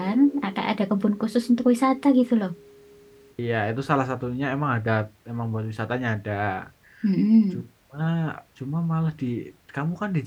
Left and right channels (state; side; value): identical; both; correlation 1.00